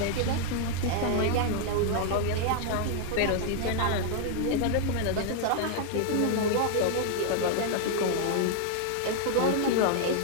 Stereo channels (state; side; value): different; both; correlation 0.00